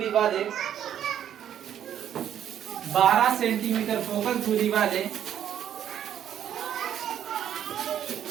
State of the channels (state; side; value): quieter; left; 10.0 dB